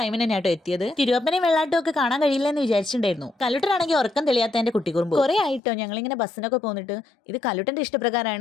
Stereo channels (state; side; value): drops out; right; at 5.6 s